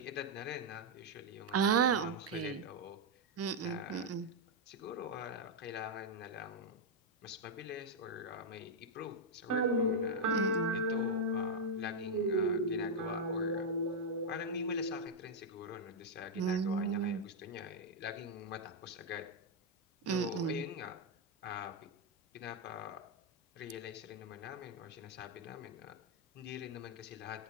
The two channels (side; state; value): both; normal; correlation -0.02